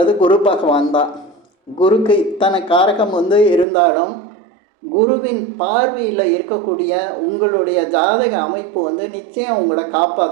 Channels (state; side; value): drops out; left; at 3.7 s